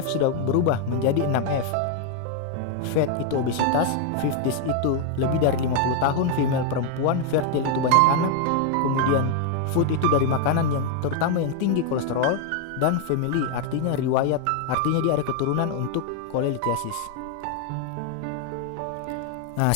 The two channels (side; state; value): both; different; correlation 0.00